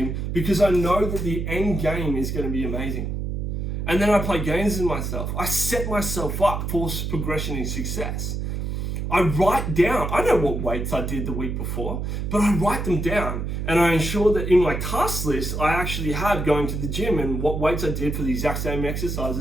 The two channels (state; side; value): noise; right; hum, 3 dB below the sound